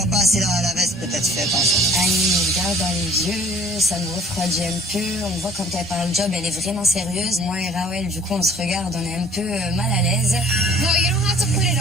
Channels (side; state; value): both; normal; correlation 0.54